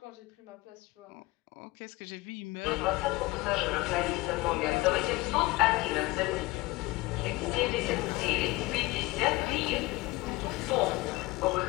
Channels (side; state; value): right; quieter; 21.2 dB